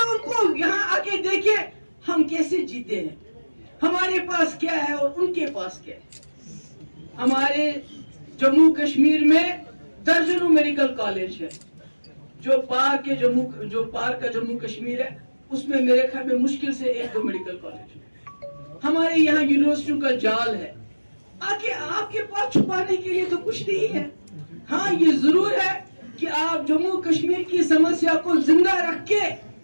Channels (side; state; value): both; inverted; correlation -1.00